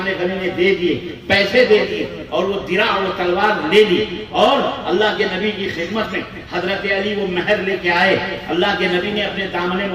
غنی نے دے دیے، پیسے دے دیے، اور وہ درع اور تلوار لے لی، اور اللہ کے نبی کی خدمت میں حضرت علی وہ مہر لے کے آئے۔ اللہ کے نبی نے اپنے دامن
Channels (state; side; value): identical; both; correlation 1.00